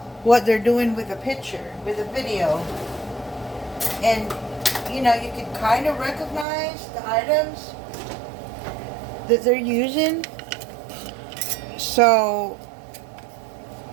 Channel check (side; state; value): left; drops out; at 6.5 s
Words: what they're doing with a picture, with a video. And, you know, you can kind of recognize the items that they're using. So,